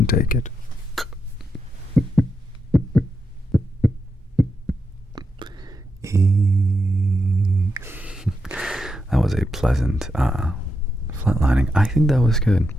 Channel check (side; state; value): both; normal; correlation 0.85